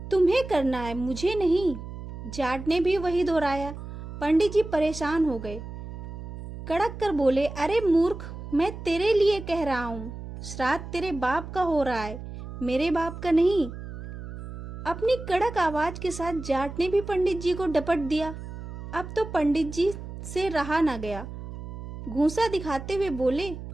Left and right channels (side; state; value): right; noise; hum, 10 dB below the sound